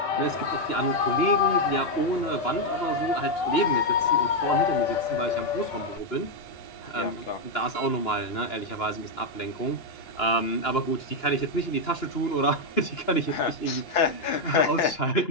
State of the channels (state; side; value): late; right; 2.9 ms